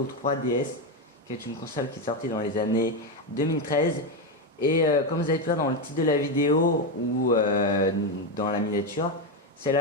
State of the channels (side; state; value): both; normal; correlation 0.09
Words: 3DS, qui est une console qui est sortie dans les années 2013. Et comme vous avez pu voir dans le titre de la vidéo ou dans la miniature, c'est